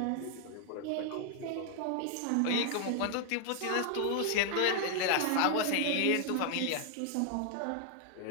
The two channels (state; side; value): different; both; correlation 0.00